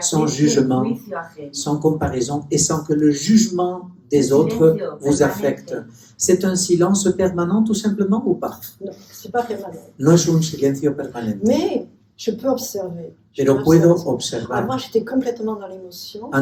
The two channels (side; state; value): both; identical; correlation 1.00